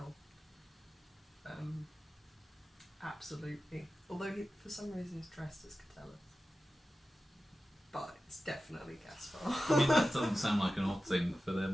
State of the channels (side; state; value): both; normal; correlation 0.94